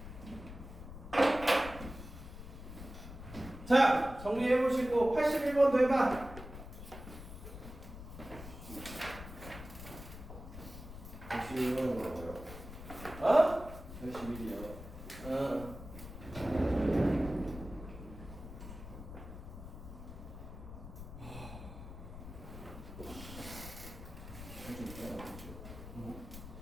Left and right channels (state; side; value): noise; left; rumble, 12 dB below the sound